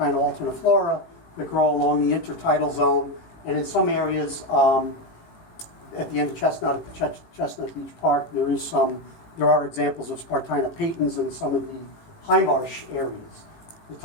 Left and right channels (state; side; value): late; right; 18 ms